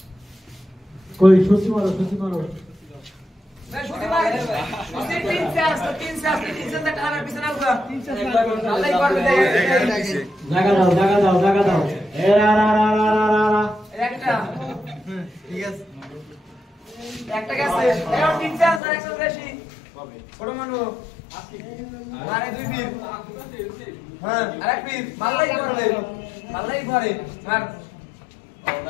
কই সুসি মারো मैं छोटी मार उसे 3 से 3 से तक आना पीछे ना हुआ 3 से अल्लाह एक बार दे জায়গা দাও এ রা একটা ঠিক আছে একটা গেছে এর 3 से আর একশো বেশি বড় মানু আরে দুই পীর হ্যাঁ আরেক পীর মাল্লাই করে মার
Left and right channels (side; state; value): right; drops out; at 18.8 s